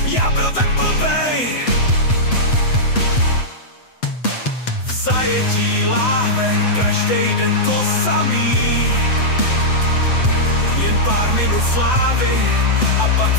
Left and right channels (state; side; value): late; right; 7.9 ms